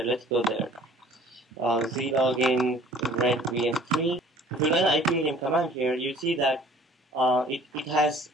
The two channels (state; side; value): normal; both; correlation 0.51